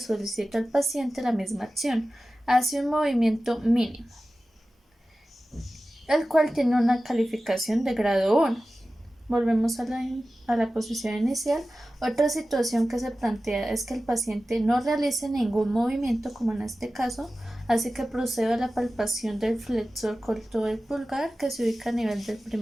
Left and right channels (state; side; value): normal; both; correlation 0.95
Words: al paciente la misma acción. Hace un movimiento mínimo, el cual tiene una calificación de grado 1. Volvemos a la posición inicial. Otra situación que se plantea es que el paciente no realice ningún movimiento, como en este caso, así que procedo a la palpación del flexor corto del pulgar, que se ubica a nivel del